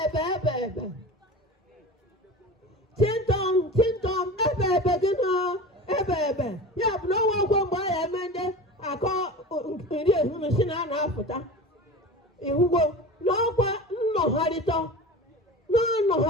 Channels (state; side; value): normal; both; correlation 0.32